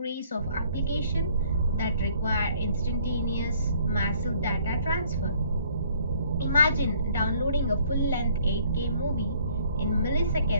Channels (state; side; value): inverted; both; correlation -0.60